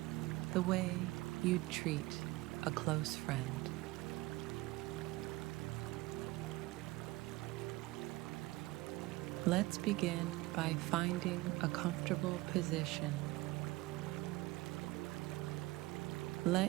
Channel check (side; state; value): left; quieter; 20.4 dB